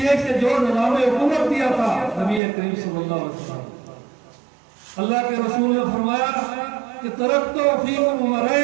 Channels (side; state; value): left; drops out; at 2.4 s